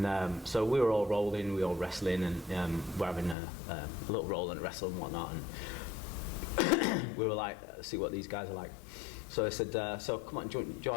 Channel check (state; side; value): drops out; right; at 3.4 s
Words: so we were all rolling, we were all wrestling, and we're having a little roll and wrestle and whatnot. And we were like, see what these guys are like. So I said, so come on, do you